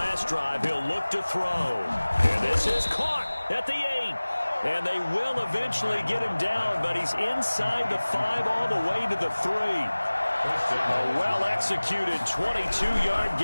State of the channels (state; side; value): inverted; both; correlation -1.00